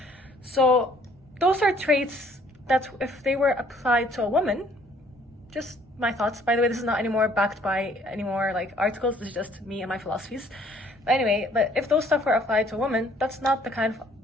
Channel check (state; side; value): normal; both; correlation 0.60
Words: So those are traits that if they were applied to a woman, just my thoughts, by the way, this is not anymore backed by any more like articles, this is just me and my philosophies, But anyway, but if those stuff were applied to women, that's not the kind of